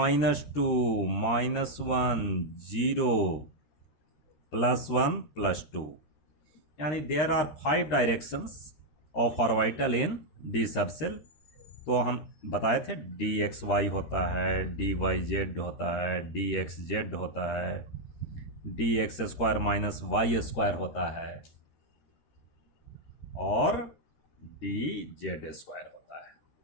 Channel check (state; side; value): late; right; 13 ms